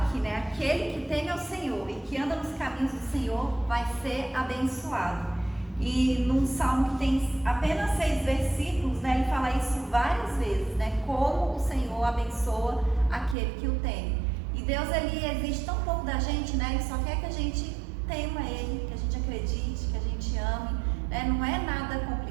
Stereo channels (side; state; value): left; drops out; at 13.4 s